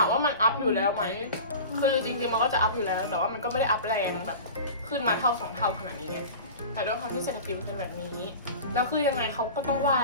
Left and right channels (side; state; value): both; inverted; correlation -0.36